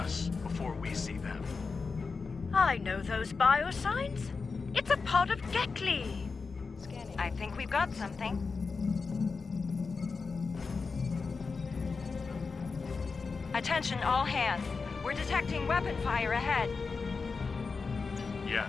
before we see them. I know those biosigns. It's a pod of Gekli. I think we've got something. Attention all hands. We're detecting weapon fire ahead.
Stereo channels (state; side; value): quieter; right; 4.6 dB